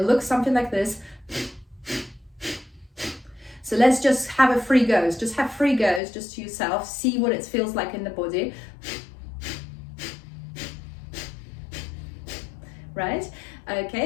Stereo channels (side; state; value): right; drops out; at 6.0 s